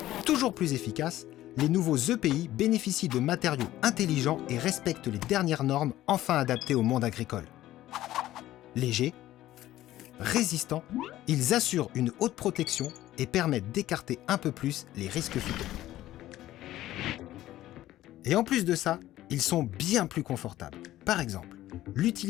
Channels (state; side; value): quieter; right; 14.6 dB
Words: Toujours plus efficaces, les nouveaux EPI bénéficient de matériaux intelligents et respectent les dernières normes enfin adaptées au monde agricole. Légers, résistants, ils assurent une haute protection et permettent d'écarter un peu plus les risques phyto. Et en plus de ça, ils sont bien plus confortables. Par exemple,